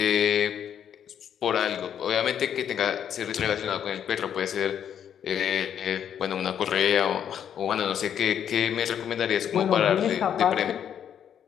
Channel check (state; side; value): quieter; right; 9.0 dB